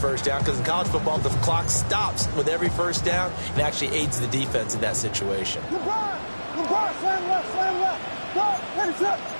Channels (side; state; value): both; inverted; correlation -1.00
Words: down because in college football, the clock stops with every 1st down and actually aids the defense in that situation.